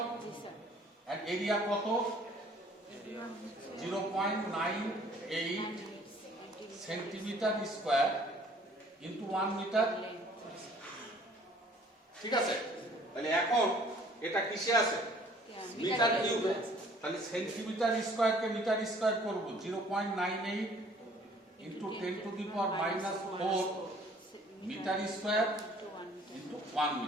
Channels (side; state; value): both; normal; correlation 0.56